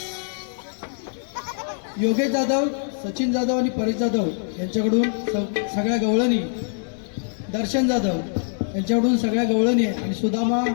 योगेश जाधव, सचिन जाधव आणि परेश जाधव यांच्याकडून सगळ्या गवळणी, दर्शन जाधव यांच्याकडून सगळ्या गवळणी आणि सुदामा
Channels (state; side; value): silent; right; digital silence